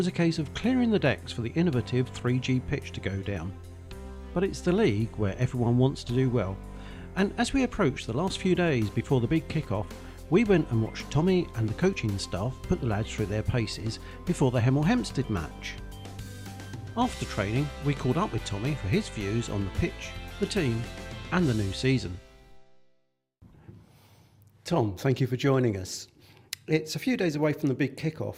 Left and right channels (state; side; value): identical; both; correlation 1.00